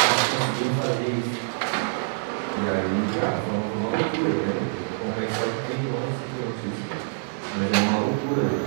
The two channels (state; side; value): silent; left; 61 dB below the other